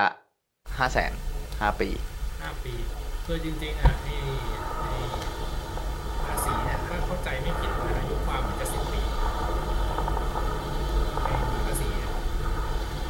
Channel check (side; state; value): both; identical; correlation 1.00